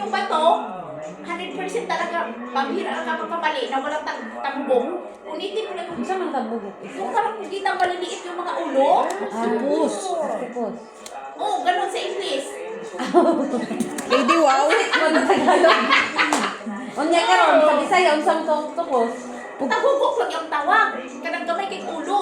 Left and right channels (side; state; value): both; identical; correlation 1.00